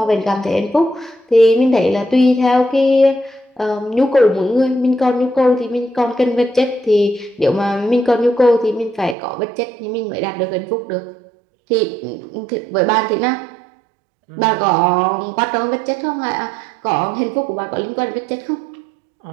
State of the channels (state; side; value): drops out; left; at 9.2 s